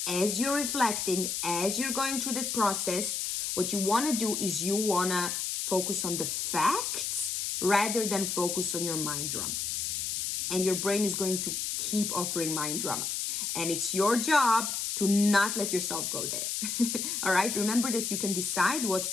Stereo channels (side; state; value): left; noise; hiss, 1 dB below the sound